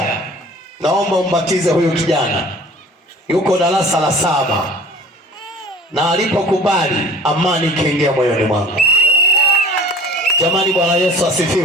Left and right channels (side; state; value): both; normal; correlation 0.46